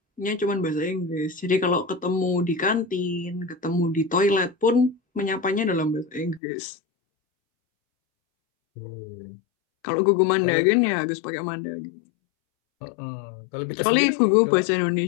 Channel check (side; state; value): right; drops out; at 6.4 s